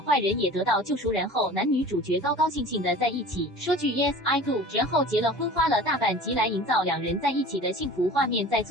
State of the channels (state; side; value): normal; both; correlation 0.41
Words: 坏人也得到救赎，然后男女主角高高兴兴的在一起，说句 yes I do， 然后结了婚，花了大半集来营造2人在一起的幸福画面，在